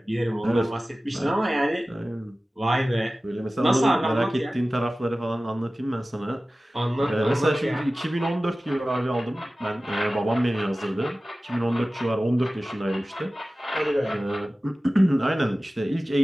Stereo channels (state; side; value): normal; both; correlation 0.96